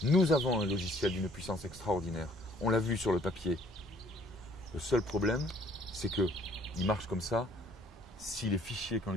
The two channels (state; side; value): normal; both; correlation 0.59